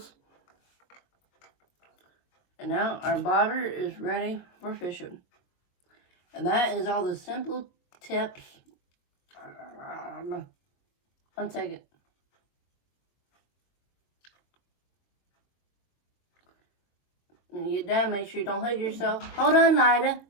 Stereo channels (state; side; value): late; right; 22 ms